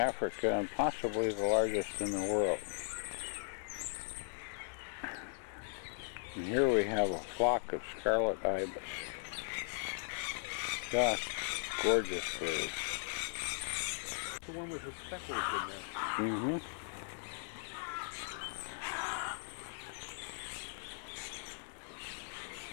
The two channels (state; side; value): silent; right; digital silence